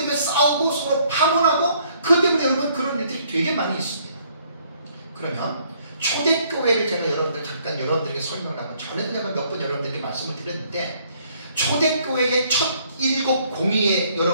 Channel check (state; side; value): inverted; both; correlation -0.65